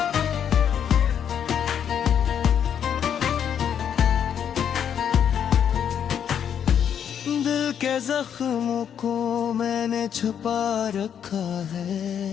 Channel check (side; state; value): right; quieter; 8.7 dB